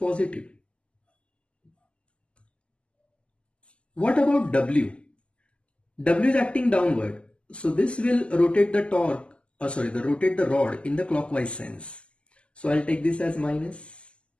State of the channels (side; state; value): right; late; 0.054 ms